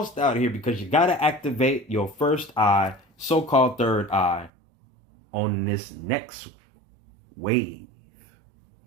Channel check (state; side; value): drops out; left; at 4.5 s